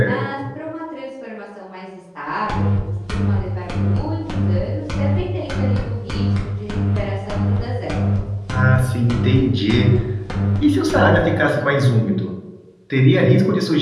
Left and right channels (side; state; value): both; identical; correlation 1.00